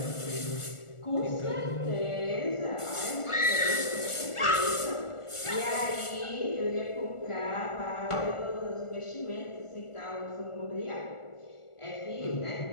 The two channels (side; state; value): right; late; 1.4 ms